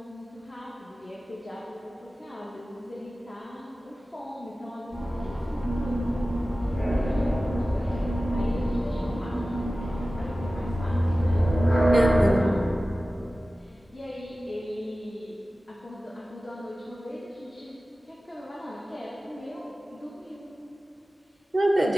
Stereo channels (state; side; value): normal; both; correlation 0.96